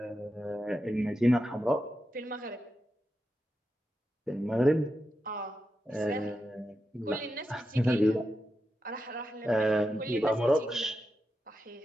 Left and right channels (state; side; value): normal; both; correlation 0.88